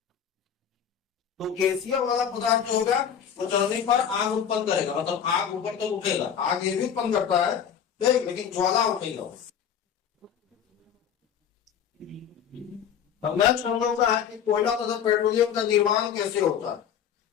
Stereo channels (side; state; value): right; quieter; 8.4 dB